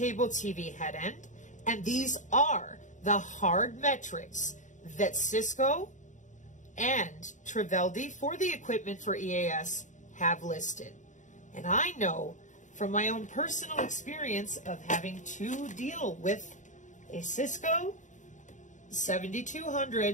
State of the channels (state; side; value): late; right; 0.36 ms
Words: TV head end, and these are the hard metrics that Cisco and Triveldi for the equipment for EAS have listed. And I know from my own personal experience of having to deal with a Cisco